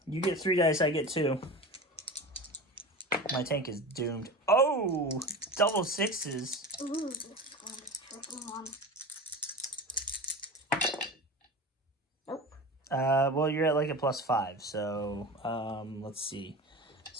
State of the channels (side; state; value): both; normal; correlation 0.30